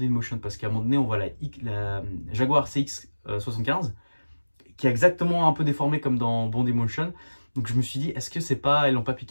in Motion. Parce qu'à un moment donné, on voit la Jaguar CX-75 qui est exactement un peu déformée comme dans Bond in Motion. Donc je me suis dit, est-ce que c'est pas, ils l'ont pas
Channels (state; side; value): inverted; both; correlation -1.00